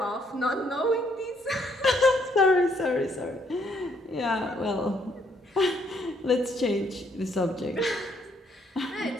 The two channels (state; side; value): normal; both; correlation 0.69